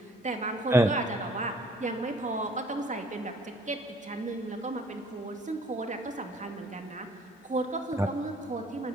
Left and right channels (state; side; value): normal; both; correlation 0.57